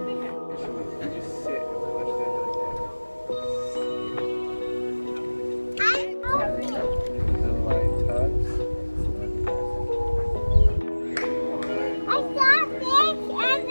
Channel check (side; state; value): both; inverted; correlation -1.00